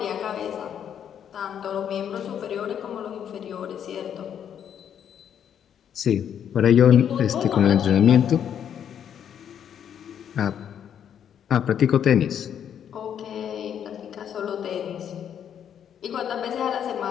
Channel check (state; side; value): quieter; right; 9.0 dB